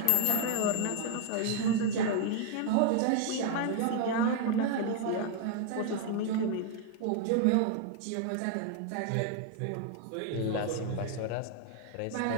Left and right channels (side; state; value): both; different; correlation 0.00